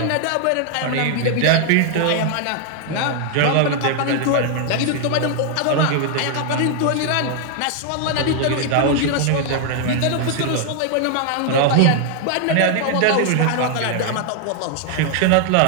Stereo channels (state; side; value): different; both; correlation 0.00